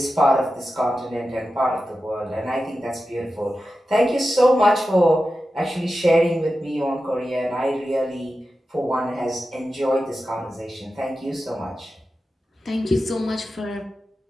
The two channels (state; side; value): normal; both; correlation 0.92